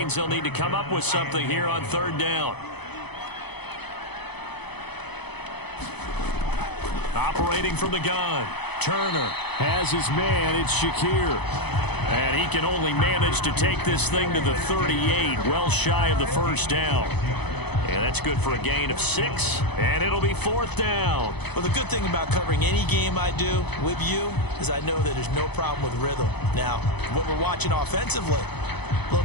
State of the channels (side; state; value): right; late; 0.98 ms